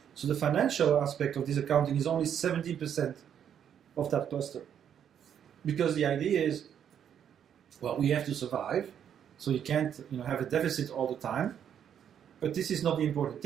So the financial aspect of this accounting is only 17% of that cluster. Because the idea is, well, we have to survive, so you can't have a deficit all the time. But this is not the important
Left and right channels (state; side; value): quieter; left; 8.9 dB